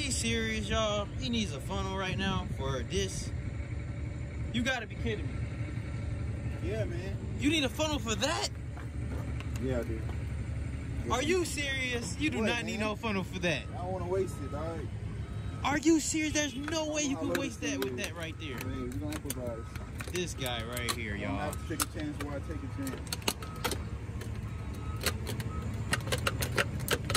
serious, y'all? He needs a funnel right now for this? You gotta be kidding me. Yeah, man. You need a funnel for that? Yeah, I do. Are you serious? You do not need no funnel for that. I don't want to waste it, dog. Are you serious? There's no way you can waste that with that right there. Man, we're gonna improvise. This guy right here, y'all. I have to take a chance while I take a chance.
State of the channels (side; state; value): both; identical; correlation 1.00